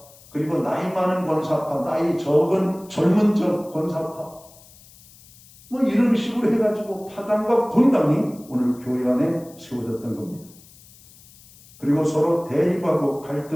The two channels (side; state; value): left; noise; hiss, 24 dB below the sound